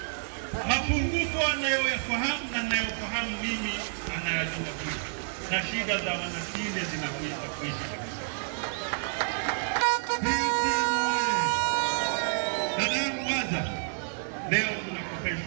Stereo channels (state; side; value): silent; left; 58 dB below the other